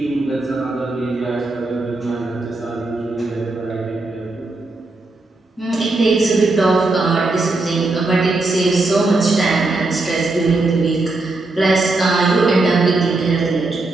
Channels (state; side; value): quieter; left; 3.2 dB